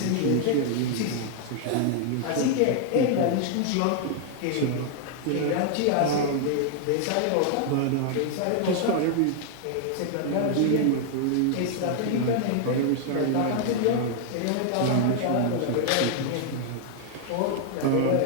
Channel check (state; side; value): different; both; correlation 0.00